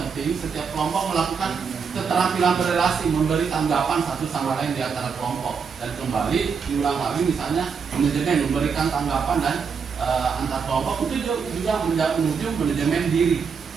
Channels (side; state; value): left; quieter; 6.0 dB